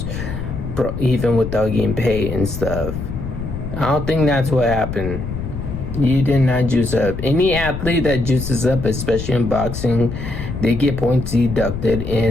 even without getting paid and stuff. I don't think that's what happened. You did not juice up. Any athlete that juices up, especially in boxing, they get points deducted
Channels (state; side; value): noise; left; rumble, 6 dB below the sound